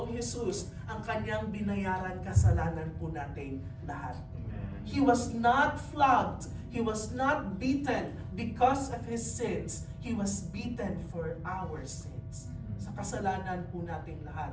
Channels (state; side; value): identical; both; correlation 1.00